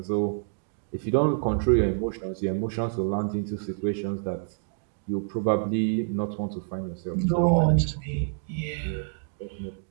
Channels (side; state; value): left; silent; digital silence